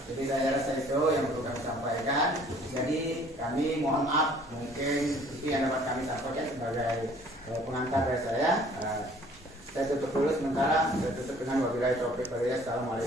Jadi saya rasa itu yang perlu kami sampaikan. Jadi kami mohon maaf, mungkin itu yang dapat kami sampaikan sebagai pengantar dari saya. Saya tutup dulu sementara. Saya tutup dengan wabillahi taufiq wal hidayah.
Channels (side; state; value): both; normal; correlation 0.55